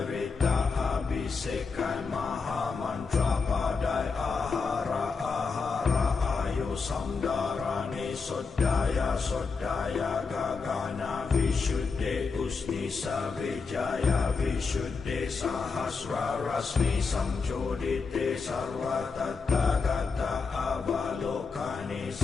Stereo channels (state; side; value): quieter; right; 4.8 dB